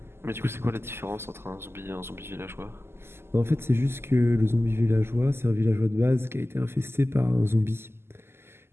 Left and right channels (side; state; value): left; late; 0.12 ms